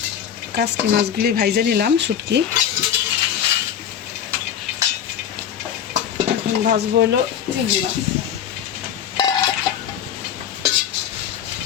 কাচকি মাছগুলি ভাইজে নিলাম, শুটকি। এখন ভাজবো হলো চিংড়ি মাছ।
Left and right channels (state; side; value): quieter; right; 9.2 dB